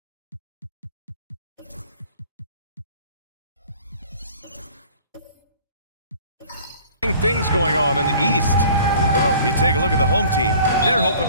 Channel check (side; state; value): both; inverted; correlation -0.49